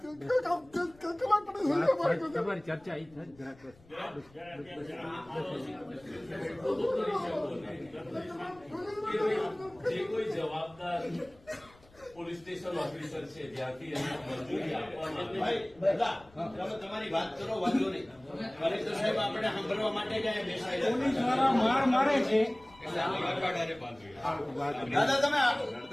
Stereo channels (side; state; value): left; noise; rumble, 27 dB below the sound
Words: કલાક તમારી ચર્ચા અહીં જે કોઈ જવાબદાર પોલીસ સ્ટેશન ઓફિસર છે જ્યાંથી એને મંજૂરી આપવામાં તમારી વાત કરો, વાંધો નહીં. કલેક્ટર સાહેબ આપણે સાંભળવા માટે જ અહીંયા બેસાયેલા. પોલીસ વાળા માર મારે છે. દાદા તમે